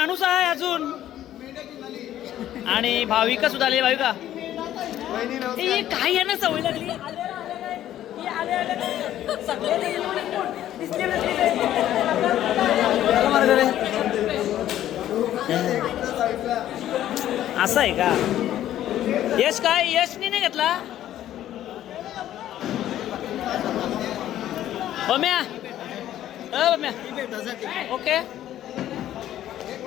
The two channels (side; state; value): right; quieter; 12.3 dB